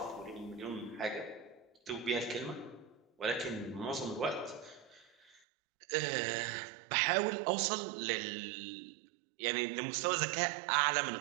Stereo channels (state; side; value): drops out; left; at 5.4 s